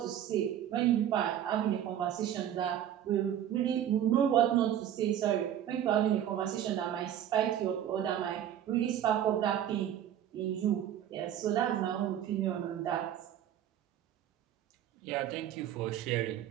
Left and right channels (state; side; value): quieter; left; 10.5 dB